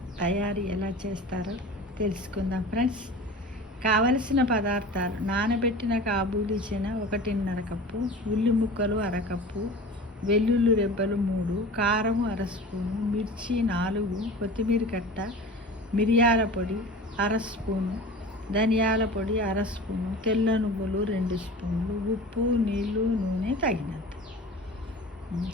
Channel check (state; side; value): normal; both; correlation 0.37